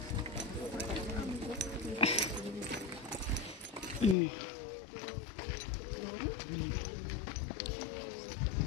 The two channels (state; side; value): drops out; right; at 4.2 s